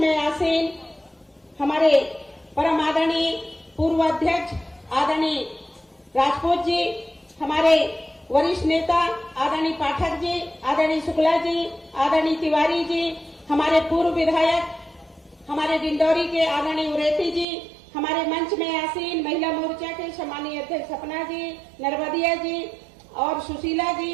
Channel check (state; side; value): drops out; left; at 17.4 s